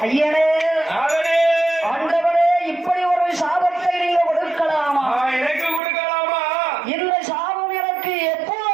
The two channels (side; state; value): left; drops out; at 5.8 s